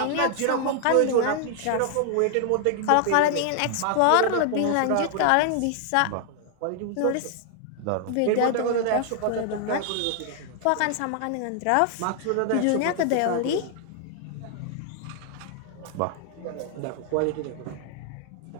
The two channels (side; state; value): both; different; correlation 0.00